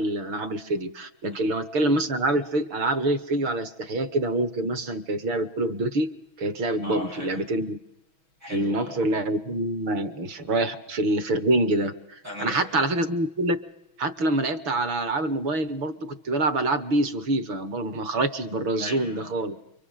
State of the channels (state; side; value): late; left; 6.2 ms